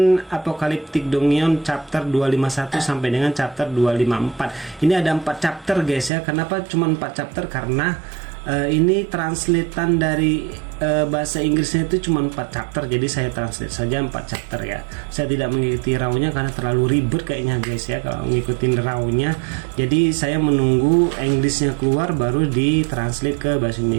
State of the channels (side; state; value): left; drops out; at 6.1 s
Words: Apocalyptic Dongion chapter 251 sampai dengan chapter 254. Ini ada 4 chapter guys ya. Kenapa cuma 4 chapter? Karena ini translatean dari bahasa Inggrisnya itu cuma 4 chapter. Jadi saya translate saja 4 chapter ya. Saya tidak mengikuti raw-nya karena terlalu ribet kayaknya guys ya kalau ngikutin raw-nya. Jadi saya menunggu Inggrisnya keluar baru ditranslate ke bahasa